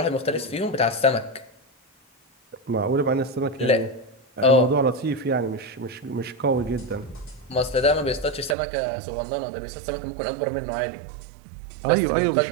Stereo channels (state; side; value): drops out; left; at 8.6 s